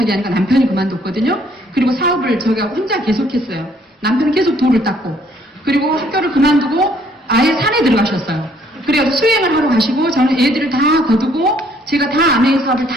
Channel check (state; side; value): normal; both; correlation 0.64